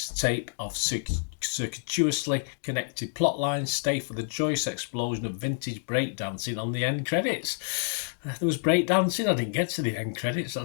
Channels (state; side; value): silent; right; digital silence